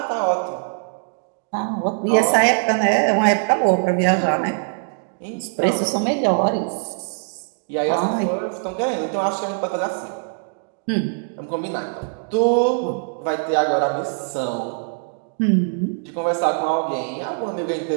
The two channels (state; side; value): silent; left; 64 dB below the other